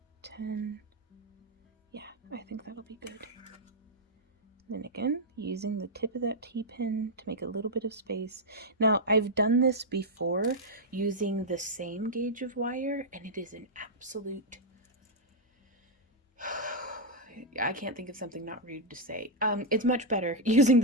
10. Yeah, I think that'll be good. Then again, using the tip of that T-pin to make a little bit of space. Now, I've done this before using the same gauge of wire, and it is an absolute... I can't think of something not rude to say. It's much better using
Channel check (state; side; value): normal; both; correlation -0.03